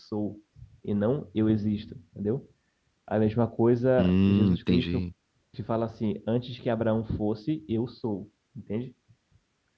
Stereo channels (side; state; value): both; identical; correlation 1.00